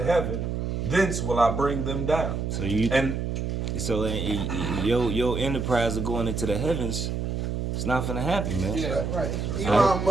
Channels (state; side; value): noise; right; hum, 2 dB below the sound